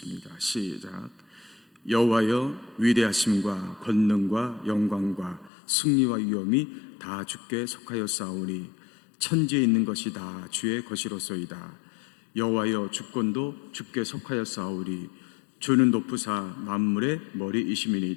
시작. 여호와여, 위대하심과 권능과 영광과 승리와 위엄이 다 주께 속하였사오니 천지에 있는 것이 다 주의 것이로소이다. 여호와여, 주권도 주께 속하였사오니 주는 높으사 만물의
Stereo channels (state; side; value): drops out; right; at 5.5 s